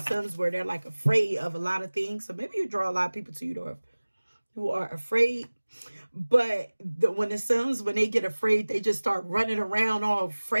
where they're like afraid of a lot of things. So maybe you draw a lot of people to you who are afraid. But when they get afraid, they just start running around all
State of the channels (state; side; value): inverted; both; correlation -1.00